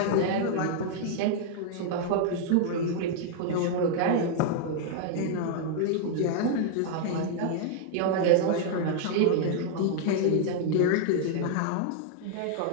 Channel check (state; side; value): different; both; correlation 0.00